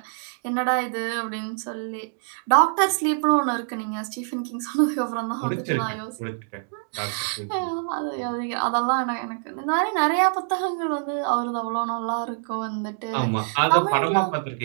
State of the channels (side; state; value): left; silent; 62 dB below the other